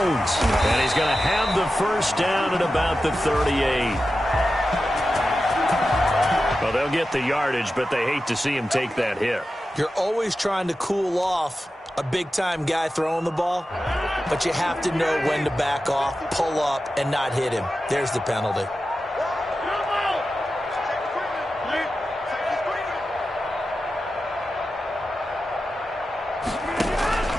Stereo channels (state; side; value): normal; both; correlation 0.92